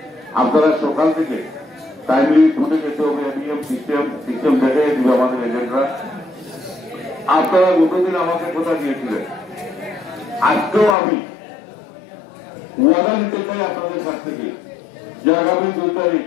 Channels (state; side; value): drops out; right; at 11.0 s